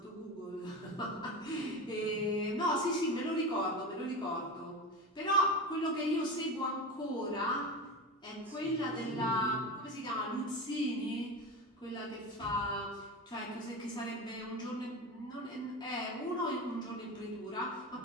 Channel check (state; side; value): normal; both; correlation 0.25